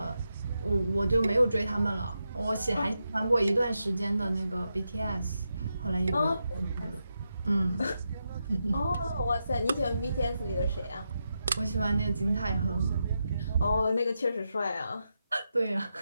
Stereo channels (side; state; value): both; inverted; correlation -0.86